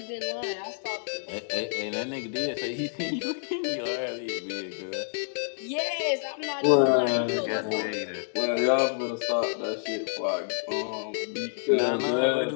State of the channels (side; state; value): right; silent; digital silence